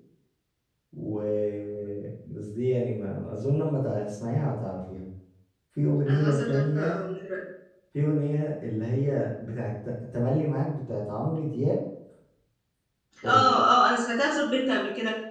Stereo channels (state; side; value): identical; both; correlation 1.00